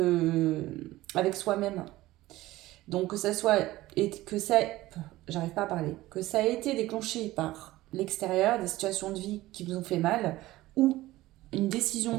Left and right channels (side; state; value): left; quieter; 17.2 dB